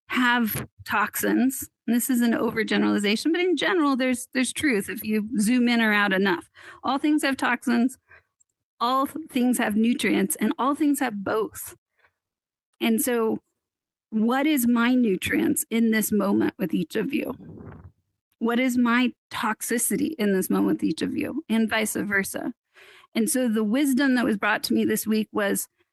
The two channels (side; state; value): both; identical; correlation 1.00